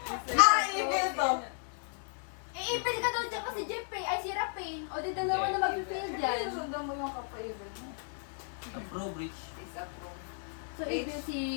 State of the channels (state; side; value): silent; right; 55 dB below the other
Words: Evil to. Ipil ka daw dyan kasi Jeffrey, ay si Rapin. O di dalawa na mag-feel dyan. Sundan mo yung kapayibig mo. Approve, Rich. Disapprove. So, evil si